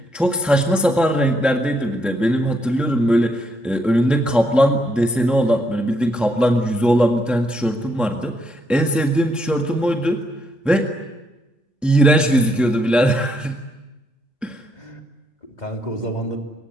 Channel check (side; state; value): both; normal; correlation 0.75